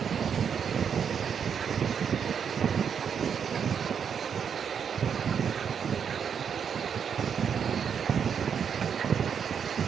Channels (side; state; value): left; quieter; 7.3 dB